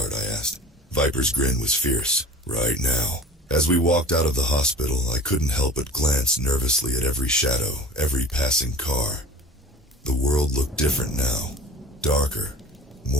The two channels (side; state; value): both; normal; correlation 0.39